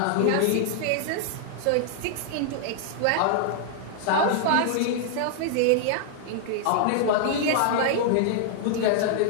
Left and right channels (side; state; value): both; different; correlation -0.01